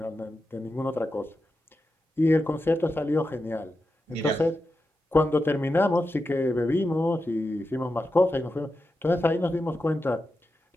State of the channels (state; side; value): normal; both; correlation 0.89